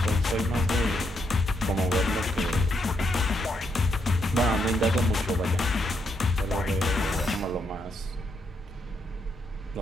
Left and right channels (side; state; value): both; normal; correlation 0.78